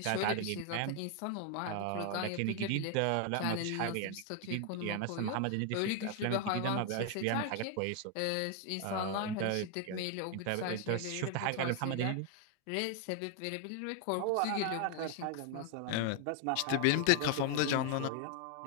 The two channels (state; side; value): different; both; correlation 0.01